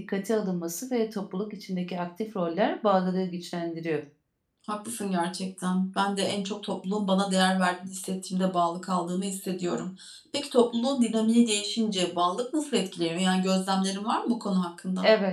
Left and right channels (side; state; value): both; identical; correlation 1.00